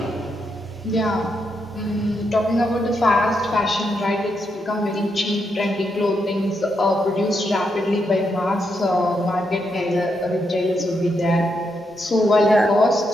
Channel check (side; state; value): both; normal; correlation 0.81